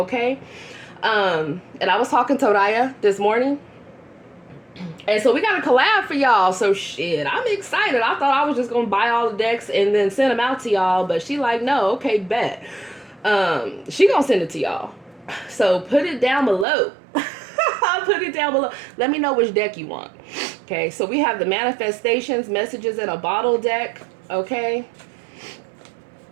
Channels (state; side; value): drops out; left; at 16.7 s